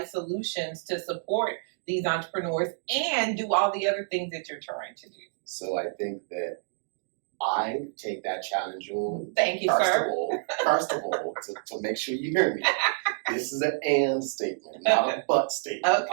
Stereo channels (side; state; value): left; silent; digital silence